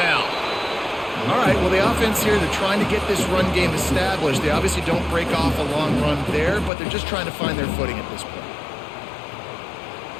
All right, well, the offense here, they're trying to get this run game established. They obviously don't break off a long run there, but they're just trying to find their footing at this point.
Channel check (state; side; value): drops out; right; at 6.7 s